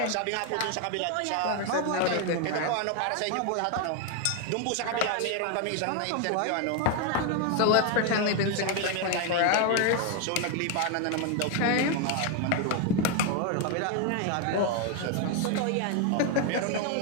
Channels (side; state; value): both; different; correlation 0.01